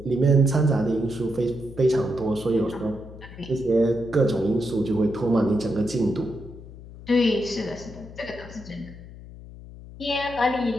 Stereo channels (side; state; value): left; noise; hum, 16 dB below the sound